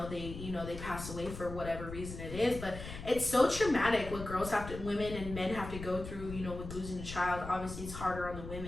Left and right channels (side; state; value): left; noise; rumble, 10 dB below the sound